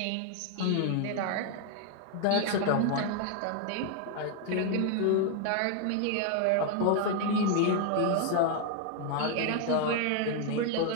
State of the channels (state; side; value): different; both; correlation 0.00